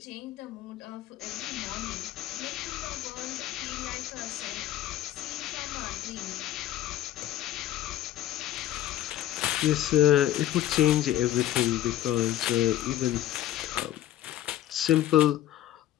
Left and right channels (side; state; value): right; quieter; 12.8 dB